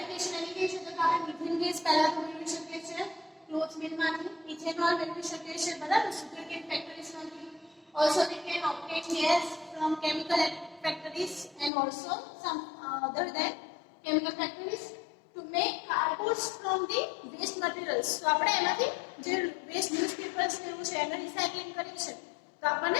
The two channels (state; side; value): drops out; right; at 11.7 s